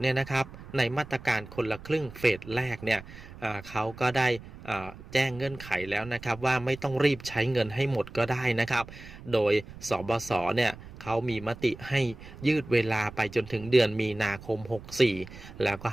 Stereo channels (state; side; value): noise; right; rumble, 16 dB below the sound